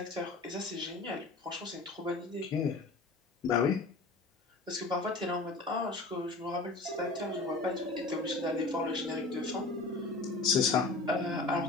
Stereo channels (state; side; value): quieter; right; 3.4 dB